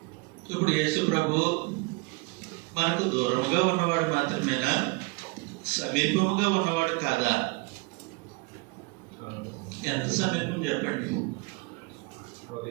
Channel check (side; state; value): left; quieter; 27.2 dB